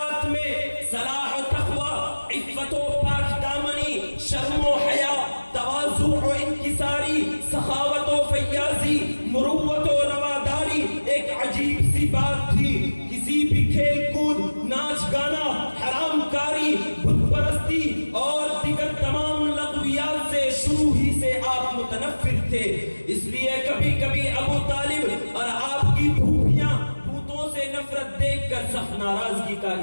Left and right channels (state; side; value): inverted; both; correlation -1.00